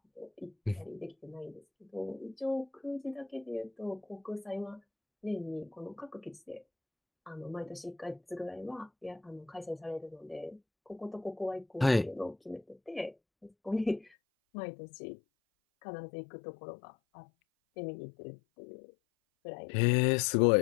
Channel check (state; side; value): drops out; right; at 14.1 s